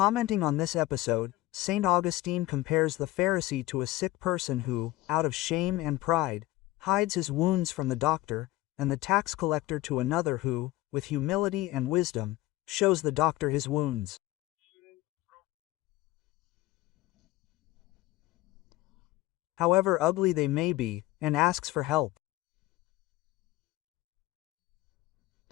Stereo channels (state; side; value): quieter; right; 17.4 dB